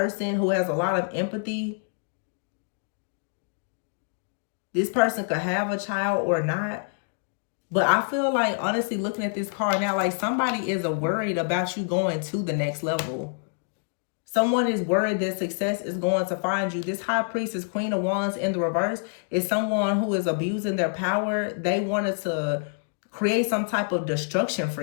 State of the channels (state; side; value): silent; right; 60 dB below the other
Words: who has a lot of empathy. This person could have a child or not. But I feel like, honestly, looking at this card now, like somebody is worried about you going to the next level. Someone is worried that success is going to find you. This High Priestess, Queen of Wands in the reverse, is someone who is abusing their power. They wanted to create some type of destruction for